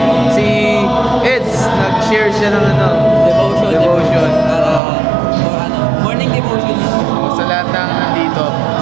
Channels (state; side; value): drops out; left; at 4.8 s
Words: Si Eds, nag-share siya ng devotion. Morning devotion. Sa lahat ng nandito.